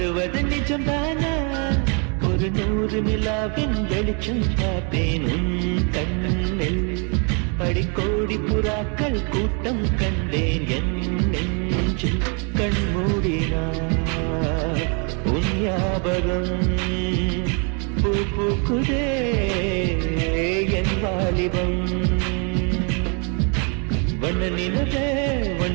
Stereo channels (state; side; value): quieter; left; 36.7 dB